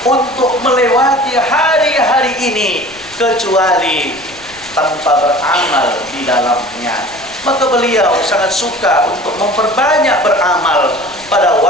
untuk melewati hari-hari ini kecuali tanpa beramal di dalamnya. Maka beliau sangat suka untuk memperbanyak beramal pada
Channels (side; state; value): left; noise; rumble, 25 dB below the sound